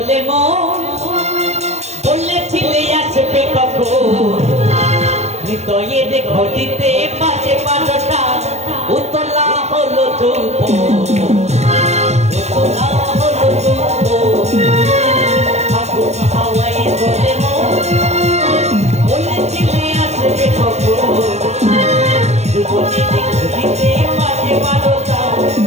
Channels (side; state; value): left; late; 0.32 ms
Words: মন, বলেছিলে আসবে কখন, হৃদয়ের ঘটিতে বাজে বারোটা, উতলা হলো চুম্ব, উতলা হলো চুম্ব। ফাগুন হাওয়ায় দোলে মন, বলেছিলে আসবে কখন, হৃদয়ের ঘটিতে বাজে বারোটা,